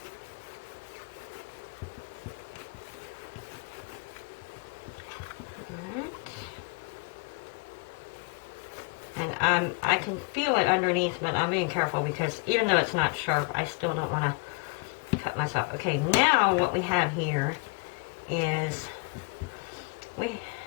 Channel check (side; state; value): right; quieter; 33.4 dB